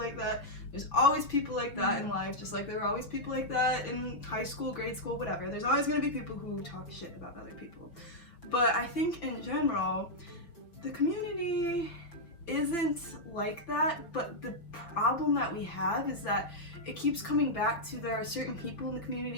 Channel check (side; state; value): right; late; 6.0 ms